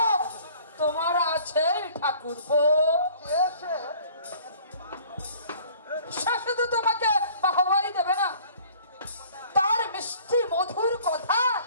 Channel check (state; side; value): inverted; both; correlation -0.52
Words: তোমার আছে ঠাকুরপো। কে সে? সে শুধু তোমাকে বাহবাই দেবে না, তার মিষ্টি মধুর কথা